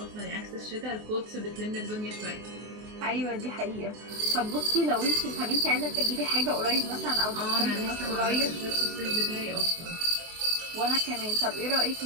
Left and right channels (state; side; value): late; left; 24 ms